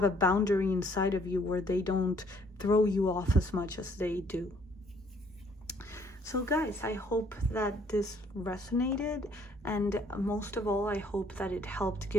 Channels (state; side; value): normal; both; correlation 0.63